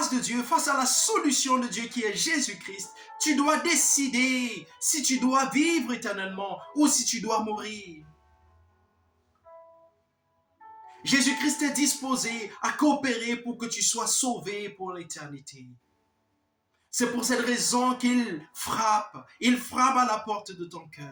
de Dieu, face à la solution de Dieu qui est Jésus-Christ, tu dois décider si tu dois vivre éternellement ou si tu dois mourir. Jésus-Christ est disposé à coopérer pour que tu sois sauvé pour l'éternité. C'est pour cette raison qu'il frappe. Il frappe à la porte de ton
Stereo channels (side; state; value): both; identical; correlation 1.00